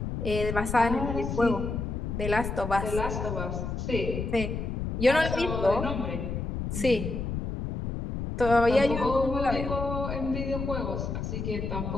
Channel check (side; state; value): left; noise; rumble, 4 dB below the sound